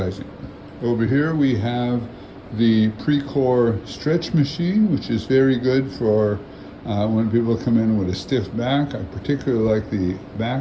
Over here we have the Precor stretch machine, which is very good for when people come in with a stiff back. I particularly like the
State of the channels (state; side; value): identical; both; correlation 1.00